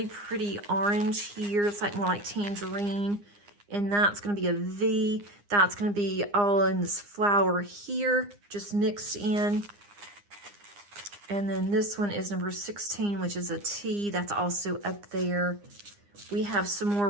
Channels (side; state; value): left; late; 9.8 ms